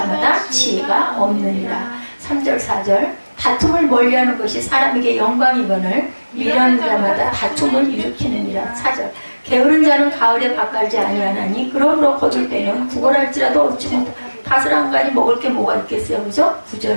지혜가 없느니라. 3절, 4절. 다툼을 멀리하는 것이 사람에게 영광이거늘 미련한 자마다 다툼을 일으키느니라. 4절. 게으른 자는 가을에 밭갈지 아니하나니 그러므로 거둘 때는 구걸할지라도 얻지 못 다스랑간이 먹을 게 뭐가 있겠어요. 그죠?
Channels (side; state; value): both; inverted; correlation -1.00